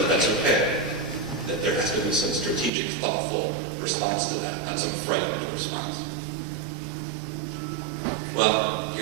that's okay, that there has to be some strategic, thoughtful response to that, not some frightened response? Well,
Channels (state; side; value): drops out; left; at 2.7 s